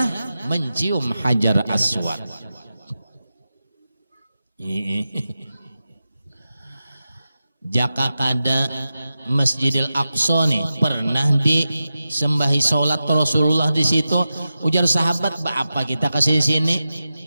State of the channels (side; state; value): both; inverted; correlation -0.92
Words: mencium Hajar Aswad. jaka kada Masjidil Aqsa nih pernah disembahi sholat Rasulullah di situ. Ujar sahabat, apa kita kasih sini